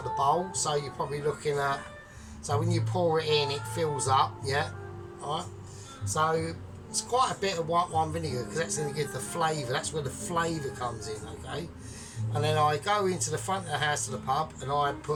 the bowl, so you're probably looking at, so when you pour it in, it fills up, yeah, alright, so it's quite a bit of white wine vinegar because that's going to give the flavour, that's where the flavour comes in, okay. And then I go into the front of the house to the pub and I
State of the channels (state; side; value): identical; both; correlation 1.00